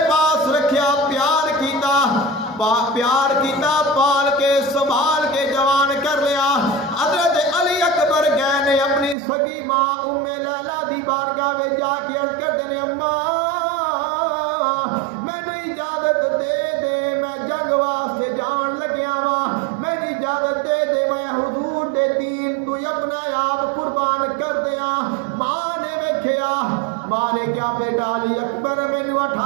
پاس رکھیا، پیار کیتا پال کے سنبھال کے جوان کر لیا۔ حضرت علی اکبر گئے نے اپنی سگی ماں ام لیلا دی بارگاہ میں جا کے عرض کرتے نے اماں مینوں اجازت دے دے، میں جنگ واسطے جان لگیا وا، مینوں اجازت دے دے میں حضور دے دین تو اپنا آپ قربان کر دیا۔ ماں نے ویکھیا، ماں نے کیا بیٹا علی اکبر مینوں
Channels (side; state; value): left; drops out; at 9.2 s